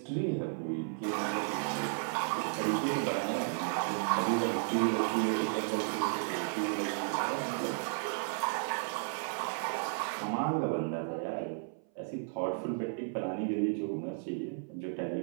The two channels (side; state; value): left; silent; 55 dB below the other